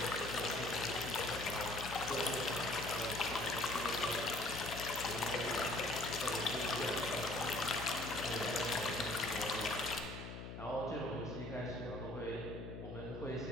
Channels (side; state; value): left; noise; hum, 9 dB below the sound